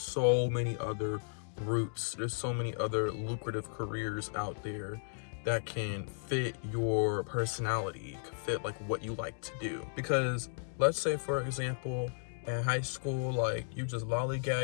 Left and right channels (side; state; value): right; silent; digital silence